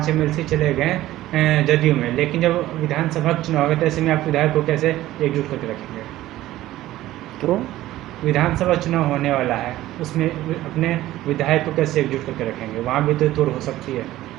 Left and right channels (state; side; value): quieter; left; 15.3 dB